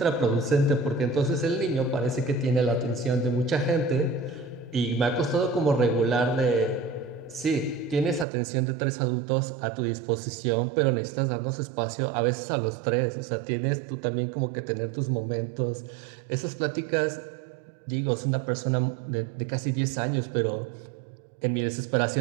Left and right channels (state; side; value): drops out; left; at 8.2 s